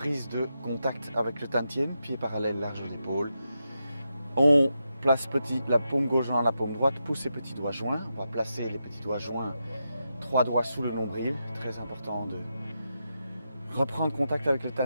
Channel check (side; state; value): both; inverted; correlation -0.87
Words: de contact avec le tantien, pied parallèle, large d'épaule. On place la paume gauche dans la paume droite, pousse les petits doigts joints. On va placer les petits doigts joints, 3 doigts sous le nombril. Très important de reprendre contact avec le